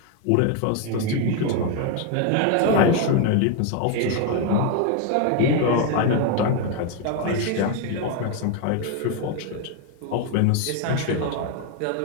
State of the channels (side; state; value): both; different; correlation 0.01